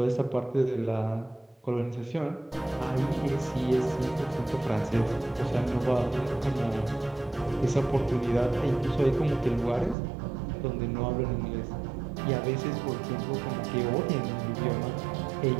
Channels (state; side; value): drops out; left; at 10.0 s